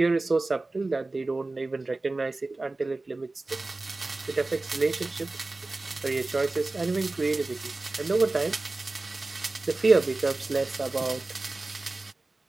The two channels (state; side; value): quieter; left; 3.2 dB